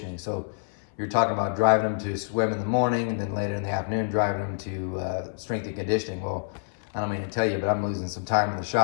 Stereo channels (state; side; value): silent; right; 60 dB below the other